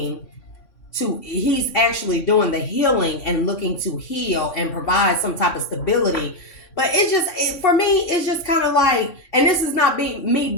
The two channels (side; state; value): right; late; 3.6 ms